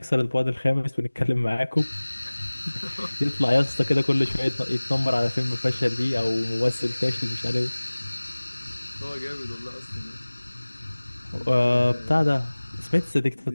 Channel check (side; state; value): both; inverted; correlation -1.00